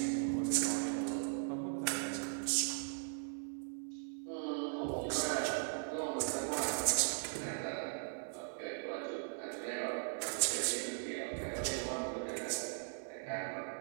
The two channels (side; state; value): left; silent; digital silence